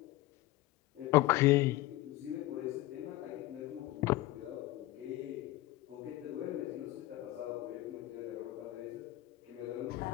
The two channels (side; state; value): right; quieter; 17.1 dB